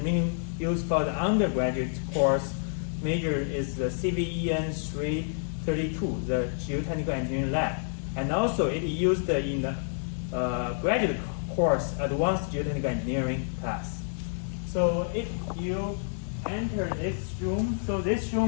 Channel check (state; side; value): silent; right; 59 dB below the other